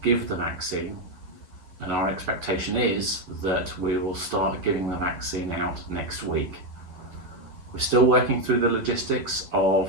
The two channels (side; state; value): left; late; 11 ms